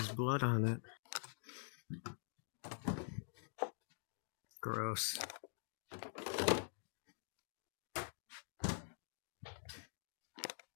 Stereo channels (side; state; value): right; silent; digital silence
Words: blood on it. Gross.